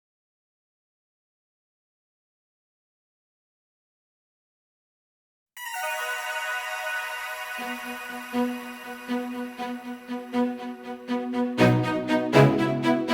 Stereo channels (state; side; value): identical; both; correlation 1.00